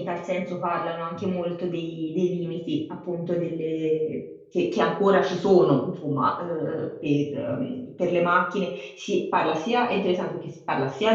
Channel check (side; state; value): both; identical; correlation 1.00